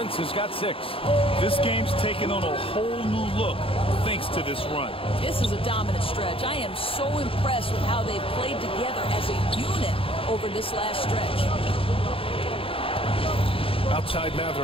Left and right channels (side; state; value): right; late; 0.27 ms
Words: has got 6. This game's taken on a whole new look thanks to this run. This is a dominant stretch. I am so impressed with how they've played together as a unit over this last stretch. Outside